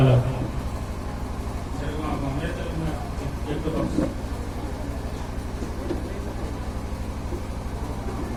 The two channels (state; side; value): identical; both; correlation 1.00